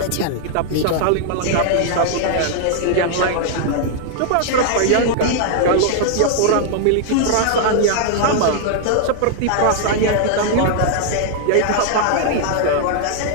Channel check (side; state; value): both; different; correlation 0.00